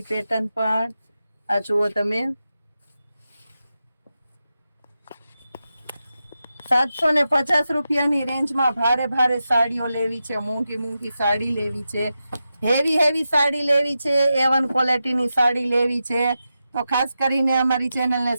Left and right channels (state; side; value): inverted; both; correlation -0.90